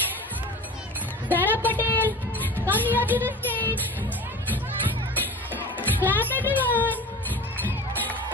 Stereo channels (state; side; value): normal; both; correlation 0.36